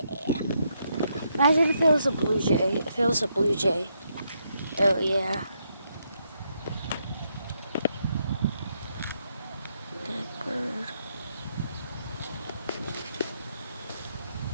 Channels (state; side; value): inverted; both; correlation -0.78